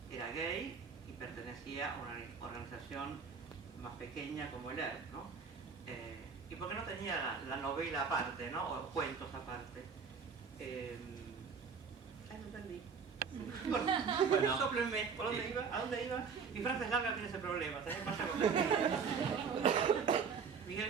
gay y pertenecía a una organización más pequeña como el ERP, ¿no? Y porque no tenía la novela aparte, ¿no? O cuentos aparte. No entendí. Bueno, sóplenme, ¿por dónde iba? ¿A dónde iba? Mi frase es larga, tiene ese problema. También pasa con Miguel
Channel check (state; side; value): quieter; left; 5.9 dB